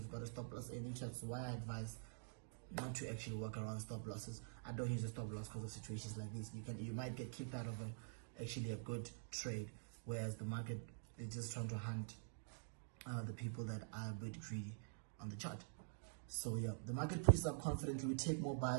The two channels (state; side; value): silent; left; digital silence